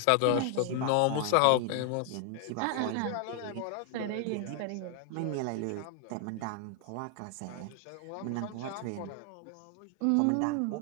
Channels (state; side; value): different; both; correlation 0.00